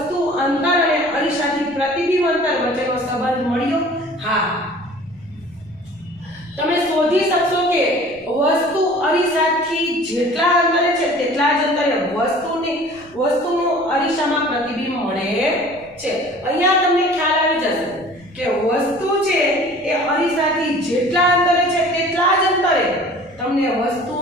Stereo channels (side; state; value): left; noise; rumble, 28 dB below the sound